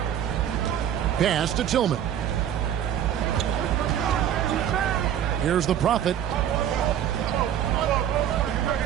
Pass to Tillman. Here's the Prophet.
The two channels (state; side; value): quieter; left; 10.0 dB